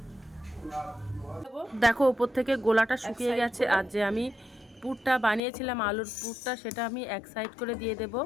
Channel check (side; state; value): right; drops out; at 5.4 s